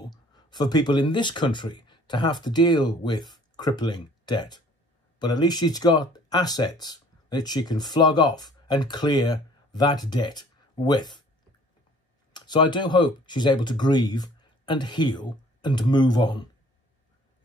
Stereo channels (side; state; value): both; normal; correlation 0.54